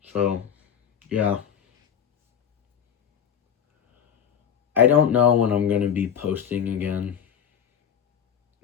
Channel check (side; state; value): right; quieter; 8.3 dB